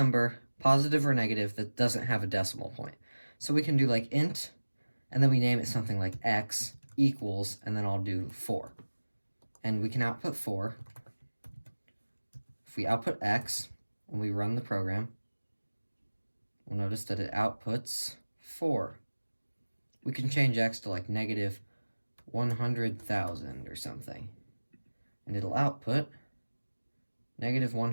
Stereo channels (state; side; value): inverted; both; correlation -1.00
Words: positive or negative, that doesn't have a decimal point. So we can do like int, and then we name it something like x equals, and then I'll do 4. And we can output 4. If we output x, and we run the program, we'll notice that it outputs 4. We can change x to like negative 100,000 or something, and it'll output negative